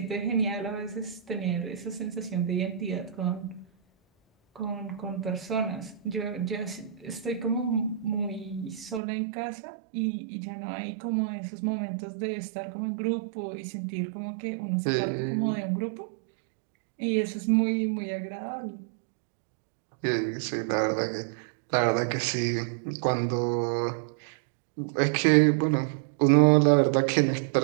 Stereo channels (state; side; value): drops out; left; at 9.0 s